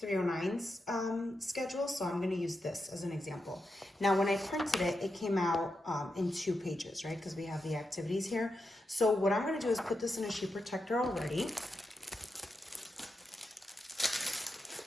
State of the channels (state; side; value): normal; both; correlation 0.87